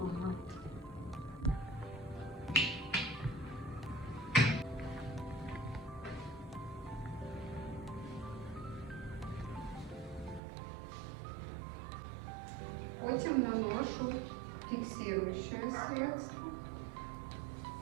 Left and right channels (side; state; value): left; drops out; at 10.4 s